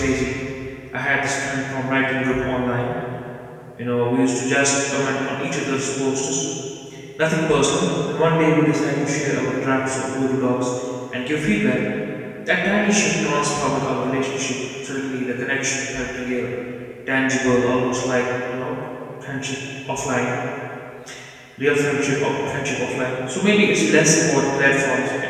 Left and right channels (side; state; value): both; identical; correlation 1.00